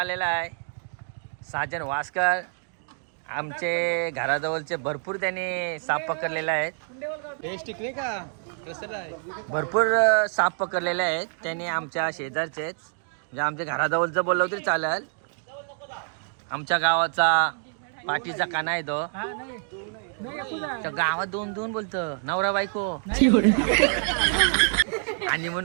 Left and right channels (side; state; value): left; silent; 60 dB below the other